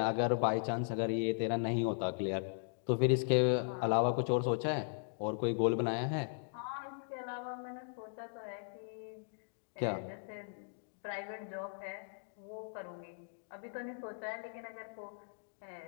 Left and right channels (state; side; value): silent; right; digital silence